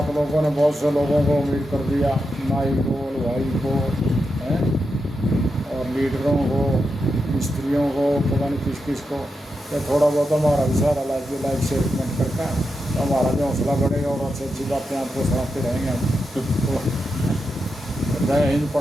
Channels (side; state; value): both; normal; correlation 0.87